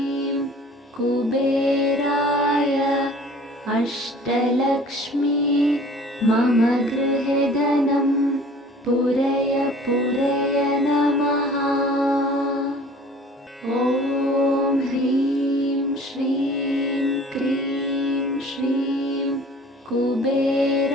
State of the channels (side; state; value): both; normal; correlation 0.48